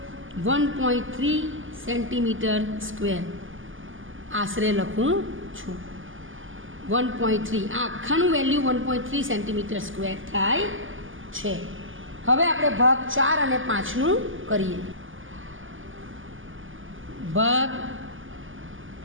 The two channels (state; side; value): late; left; 0.58 ms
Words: 1.3 સેન્ટીમીટર સ્ક્વેર. આશરે લખું છું 1.3. આ આખાનું વેલ્યુ 1.3 સેન્ટીમીટર સ્ક્વેર થાય છે. હવે આપણે ભાગ 4 અને 5નું કરીએ. ભાગ